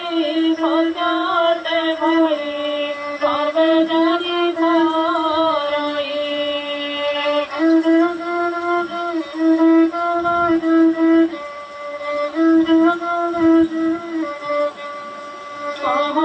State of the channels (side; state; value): both; identical; correlation 1.00